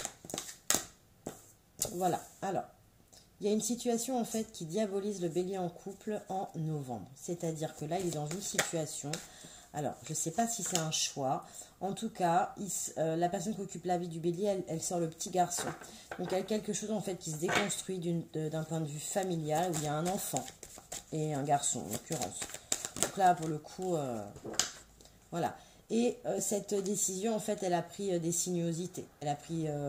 Voilà. Alors, il y a une situation en fait qui diabolise le bélier en couple en novembre. C'est-à-dire que là, il est dans une situation... Alors, je ne sais pas si c'est un choix. En tout cas, la personne qui occupe la vie du bélier, elle sort le petit garçon. Donc, il y a quelque chose en fait qui se déconstruit d'un point de vue familial où il y a un enfant et un garçon en l'occurrence. Donc là, pour le coup, voilà. Et cette décision, en fait, elle a pris des sinuosités. Elle a pris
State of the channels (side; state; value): both; identical; correlation 1.00